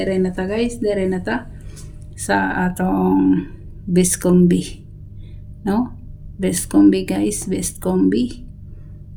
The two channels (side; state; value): both; identical; correlation 1.00